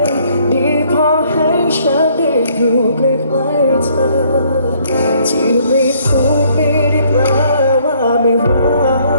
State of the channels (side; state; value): both; inverted; correlation -0.64